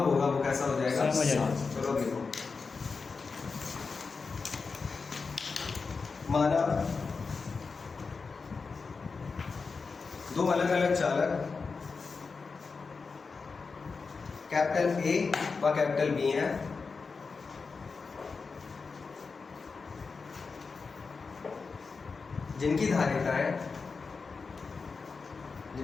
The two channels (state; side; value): quieter; right; 4.7 dB